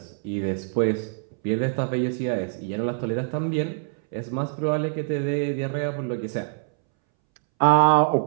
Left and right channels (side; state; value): left; silent; 62 dB below the other